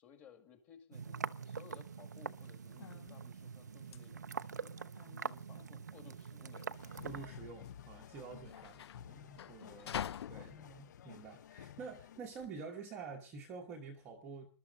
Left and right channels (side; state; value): both; normal; correlation -0.15